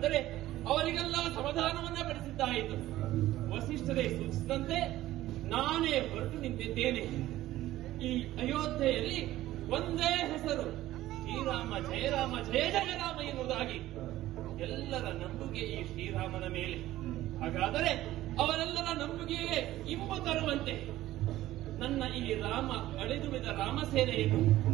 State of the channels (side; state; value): left; quieter; 15.1 dB